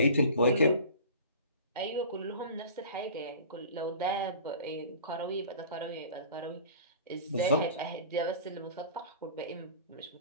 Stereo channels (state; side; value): inverted; both; correlation -0.40